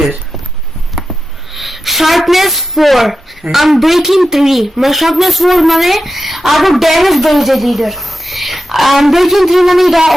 শার্পনেস 4 আনব্রেকিং 3 মানে শার্পনেস 4 মানে আরো ড্যামেজ বেড়ে যায় লিডার আনব্রেকিং 3 মানে এটা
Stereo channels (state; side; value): normal; both; correlation 0.90